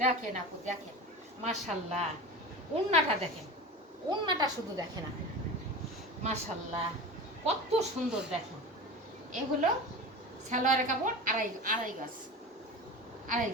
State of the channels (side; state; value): both; normal; correlation 0.31